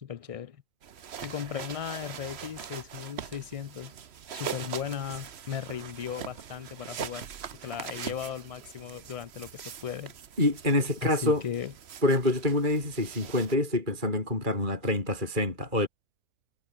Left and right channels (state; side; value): late; left; 3.1 ms